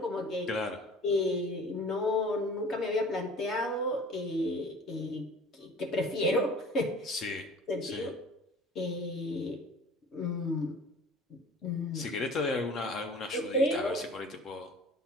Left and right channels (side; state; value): both; normal; correlation 0.45